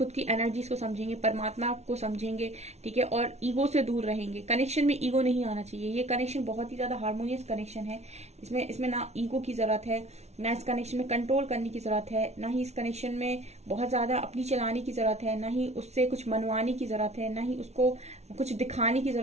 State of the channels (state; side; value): late; left; 0.31 ms